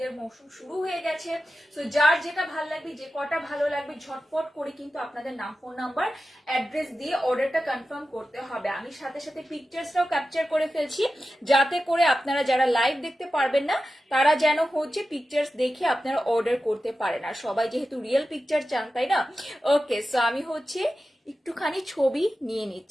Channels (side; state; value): both; normal; correlation 0.93